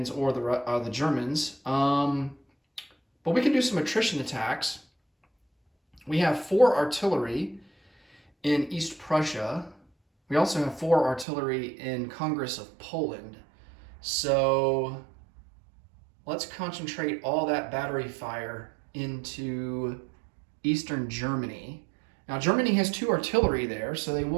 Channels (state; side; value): drops out; left; at 11.2 s